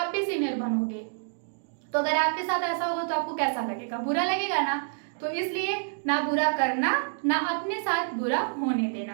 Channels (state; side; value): silent; left; digital silence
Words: भी सीनियर बनोगे, तो अगर आपके साथ ऐसा होगा तो आपको कैसा लगेगा, बुरा लगेगा ना। तो इसलिए ना बुरा करना, ना अपने साथ बुरा होने